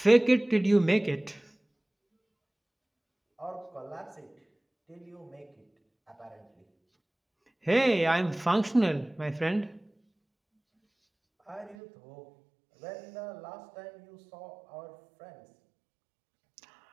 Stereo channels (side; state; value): left; drops out; at 11.8 s